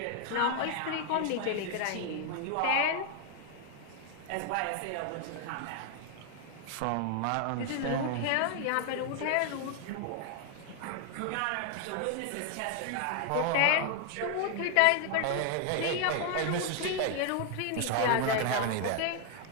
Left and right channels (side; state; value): both; different; correlation 0.00